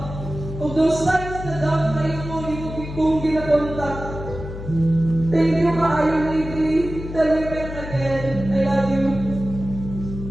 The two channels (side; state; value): left; noise; hum, 9 dB below the sound